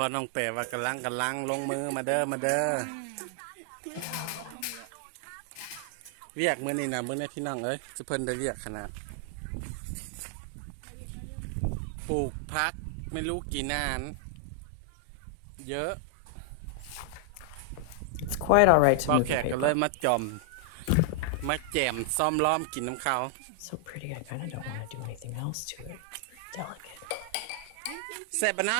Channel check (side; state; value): both; different; correlation 0.00